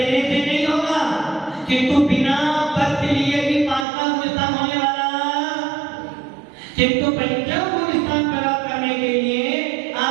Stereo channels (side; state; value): left; drops out; at 3.9 s